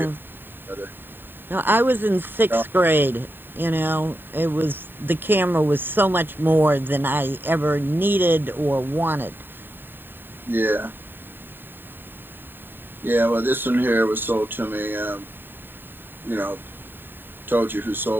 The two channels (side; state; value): left; late; 0.095 ms